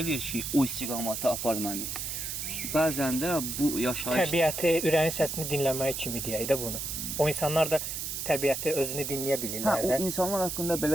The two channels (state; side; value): noise; right; hiss, 4 dB below the sound